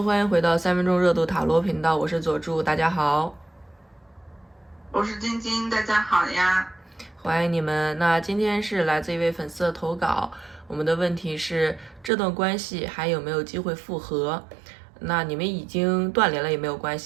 欢迎回到3分钟热度塔罗频道，我是佐助，大家好，我是晶晶，大家好呀，欢迎你们。那今天是来自一位粉丝的投稿，我们的问题是这段关系还有没有机会复合？那你们已经断联了也没有关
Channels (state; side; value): drops out; left; at 12.1 s